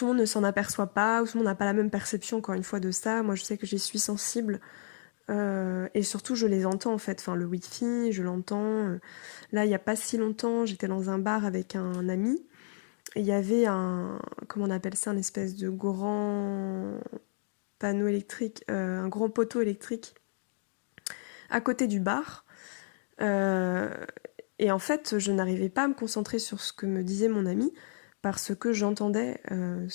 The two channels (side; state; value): right; silent; digital silence